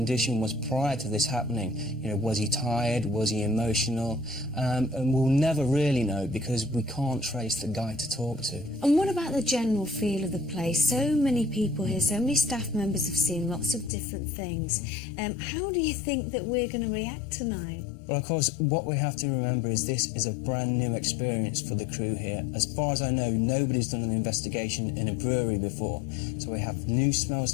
was prior to this happening. You know, was he tired? Was he emotional? And we'll never really know because we can't trace the guy to talk to. And what about the general feel of the place? So many people here, so many staff members have seen lots of different things. How do you think that we're going to react tonight? Well, of course, what we have to remember is this is a brand new experience for the crew here. As far as I know, nobody's done an investigation in a brewery before. So we have new smells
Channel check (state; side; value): drops out; right; at 13.9 s